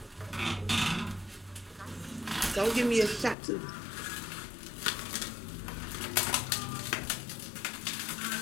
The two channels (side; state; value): right; drops out; at 3.4 s